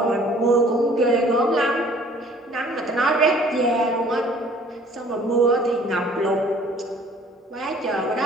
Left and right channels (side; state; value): both; normal; correlation 0.54